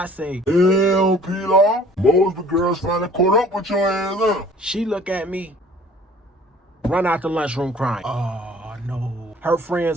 say, Hell, Pilar. Mosby girls finally caught up with your ass, huh? She look at me, run out the lunchroom crying. Oh, no. Her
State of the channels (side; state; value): both; normal; correlation 0.52